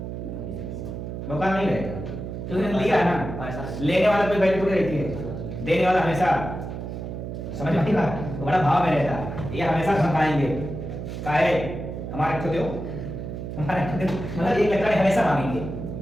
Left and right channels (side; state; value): right; noise; hum, 7 dB below the sound